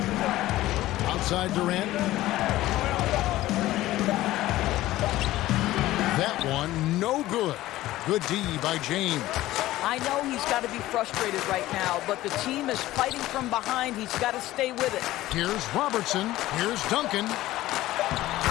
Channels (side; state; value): right; quieter; 16.0 dB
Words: Outside Durant. That one, no good. Good D by James. I know he's got to be frustrated right now, but the team is fighting from behind. He's got to stay with it. Here's Robertson. Here's Duncan.